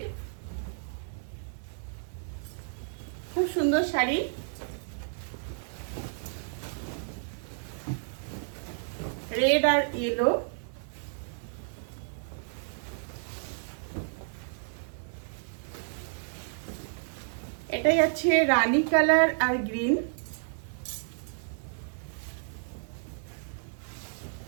খুব সুন্দর শাড়ি। রেড আর ইয়েলো, এটাই আছে রানী কালার আর গ্রিন।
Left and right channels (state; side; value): silent; left; 57 dB below the other